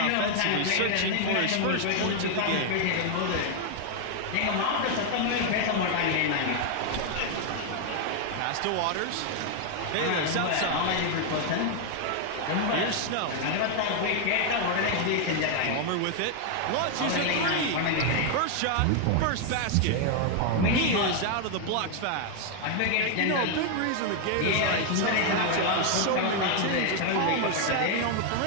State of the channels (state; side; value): different; both; correlation 0.00